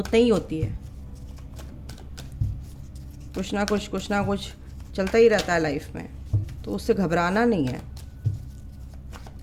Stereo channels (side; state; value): both; identical; correlation 1.00